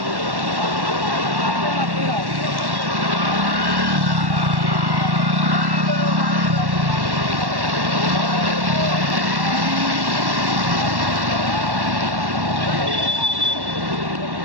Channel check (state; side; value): late; left; 1.1 ms